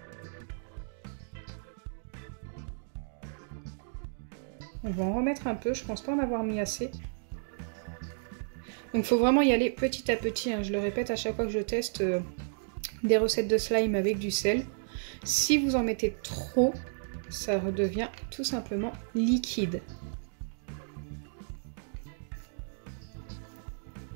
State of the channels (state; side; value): silent; left; digital silence